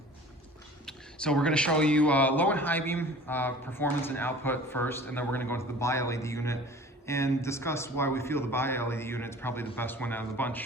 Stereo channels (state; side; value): normal; both; correlation 0.44